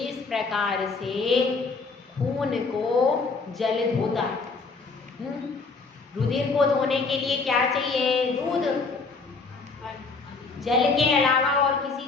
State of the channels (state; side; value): quieter; right; 4.3 dB